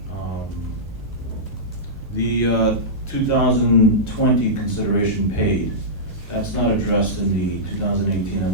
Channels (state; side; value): normal; both; correlation -0.15